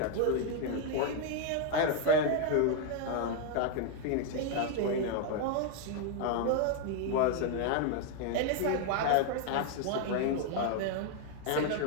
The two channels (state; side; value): different; both; correlation 0.00